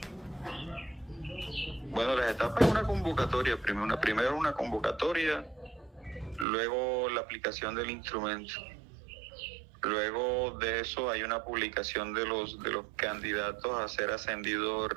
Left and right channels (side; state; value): left; drops out; at 6.5 s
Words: Bueno, las etapas es una convocatoria, primero una convocatoria, luego la aplicación del instrumento. Luego de eso hay una publicación de los candidatos a ser ascendidos